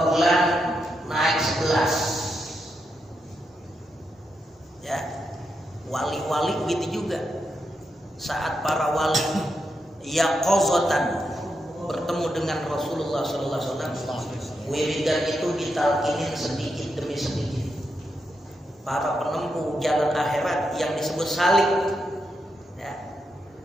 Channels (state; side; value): normal; both; correlation 0.84